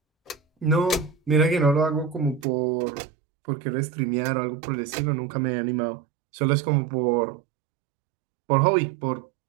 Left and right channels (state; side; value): drops out; left; at 2.5 s